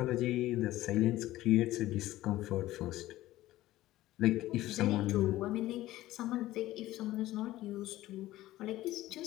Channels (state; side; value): quieter; right; 15.9 dB